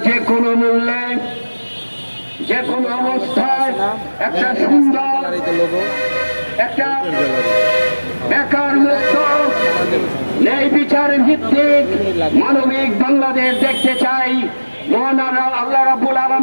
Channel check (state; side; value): inverted; both; correlation -1.00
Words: যে কোনো মূল্যে, যে কোনো অবস্থায় একটা সুন্দর, একটা বেকার মুক্ত, ন্যায় বিচার ভিত্তিক মানবিক বাংলাদেশ দেখতে চাই। মহান আল্লাহ রাব্বুল